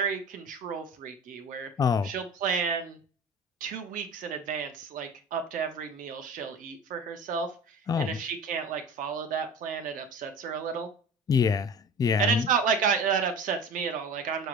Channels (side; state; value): both; normal; correlation 0.36